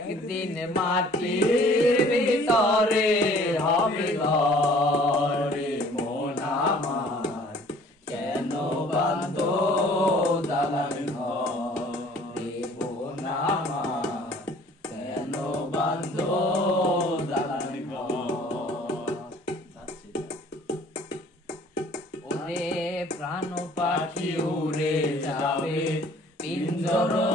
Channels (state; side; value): normal; both; correlation 0.53